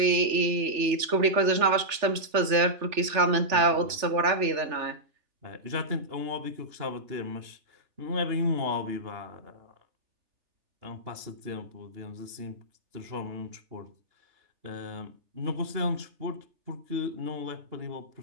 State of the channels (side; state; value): left; late; 3.4 ms